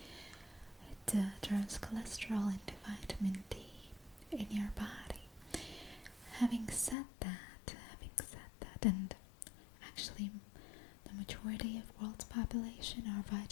turns cholesterol into vitamin D in your body. Having said that, and actually the majority of world's population are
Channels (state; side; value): drops out; right; at 7.0 s